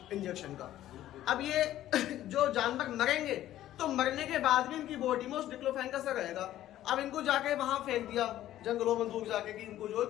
इंजेक्शन का। अब ये जो जानवर मरेंगे तो मरने के बाद भी इनकी बॉडी में उस डिक्लोफेन का असर रहेगा। अब इनको जाके वहां फेंक दिया जंगलों में दूर जाके कि इनको जो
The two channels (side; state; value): right; quieter; 13.2 dB